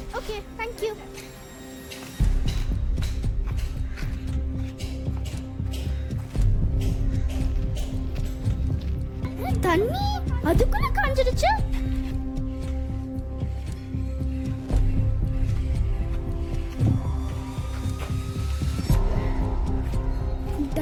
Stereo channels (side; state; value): both; identical; correlation 1.00